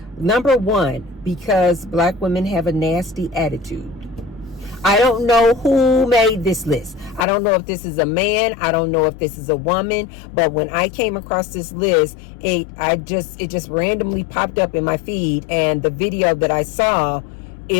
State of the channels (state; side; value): drops out; right; at 7.2 s